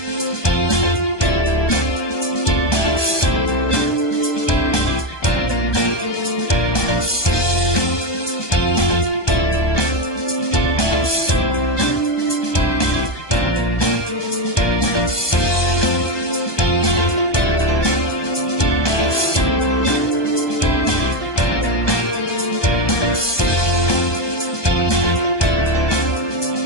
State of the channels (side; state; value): right; late; 1.2 ms